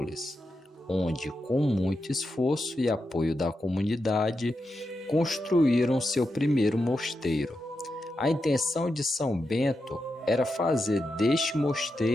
onde, com muito esforço e apoio da comunidade, construíram seu primeiro mosteiro. A intenção de São Bento era fazer deste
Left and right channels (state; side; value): normal; both; correlation 0.87